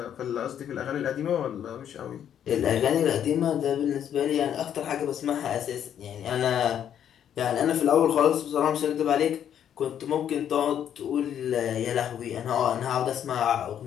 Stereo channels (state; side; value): quieter; right; 9.5 dB